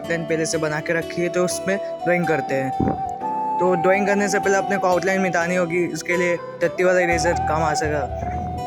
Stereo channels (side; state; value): both; identical; correlation 1.00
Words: पहले से बना के रखी है तो उसमें ड्राइंग करते हैं। तो ड्राइंग करने से पहले अपने को आउटलाइन मिटानी होगी, इसके लिए टट्टी वाला इरेजर काम आ सकेगा।